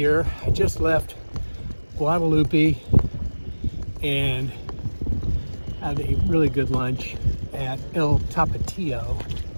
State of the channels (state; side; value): inverted; both; correlation -1.00